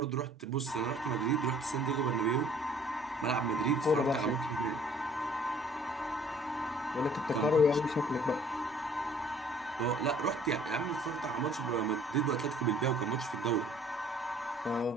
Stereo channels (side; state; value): both; normal; correlation 0.55